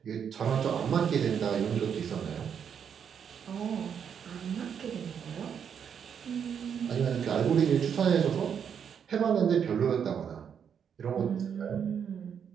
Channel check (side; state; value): left; quieter; 7.7 dB